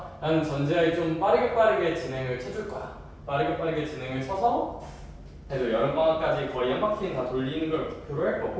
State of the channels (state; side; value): identical; both; correlation 1.00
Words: 전제하에 좀 빠르게 진행을 쳐줄 거야. 빠르게 진행을 쳐서 그래도 여름방학까지 거의 한 바퀴는 다 돌리는 걸 목표로 할